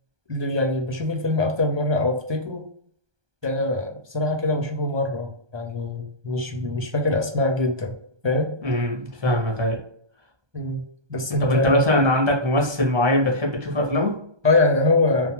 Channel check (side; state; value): left; late; 1.2 ms